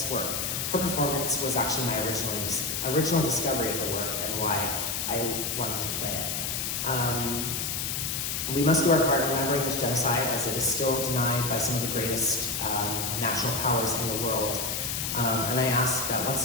work. Her performance was actually my original discovery of the work and why I wanted to play it. We must do our part in remembering this genocide, as it is still denied by some of the greatest national powers in the world. And I ask that once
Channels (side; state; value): left; noise; hiss, 1 dB below the sound